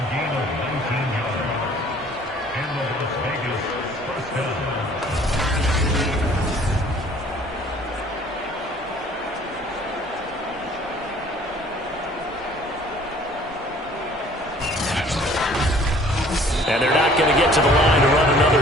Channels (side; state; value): both; normal; correlation 0.54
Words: yards. And the Las Vegas first down. And they're not going to get to the line to run another